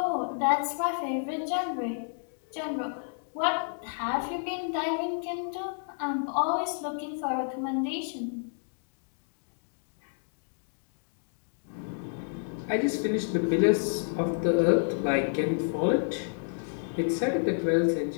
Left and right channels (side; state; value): right; silent; digital silence